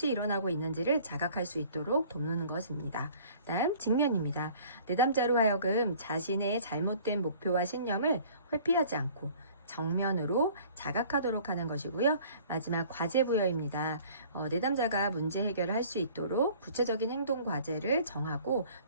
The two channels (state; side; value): inverted; both; correlation -0.52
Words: 일어나고 있는지를 자각할 수 있도록 돕는 것입니다. 다음 직면입니다. 내담자로 하여금 자신의 잘못된 목표와 신념을 회피하지 않고 정면으로 자각하도록 하는 것이고요. 마지막 과제부여입니다. 내담자가 문제 해결을 할 수 있도록 구체적인 행동 과제를 정하고